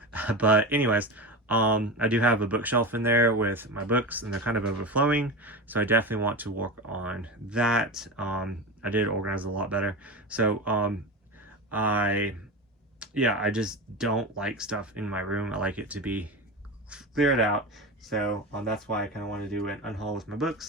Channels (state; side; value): normal; both; correlation 0.24